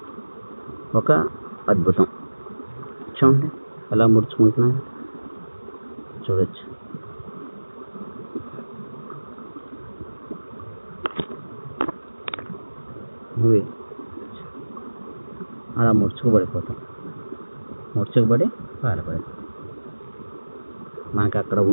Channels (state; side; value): inverted; both; correlation -1.00